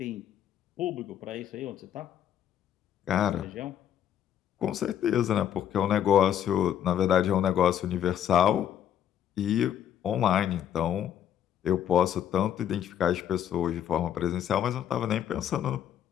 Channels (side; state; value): right; quieter; 10.0 dB